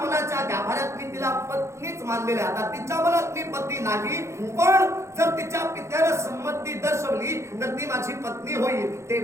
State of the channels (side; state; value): left; late; 0.14 ms